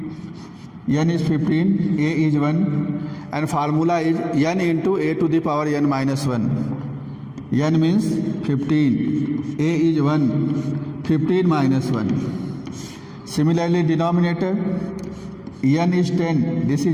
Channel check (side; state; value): both; identical; correlation 1.00